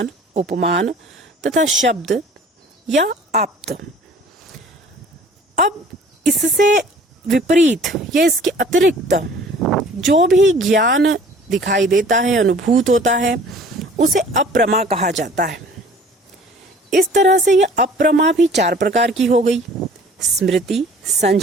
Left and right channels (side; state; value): both; normal; correlation 0.50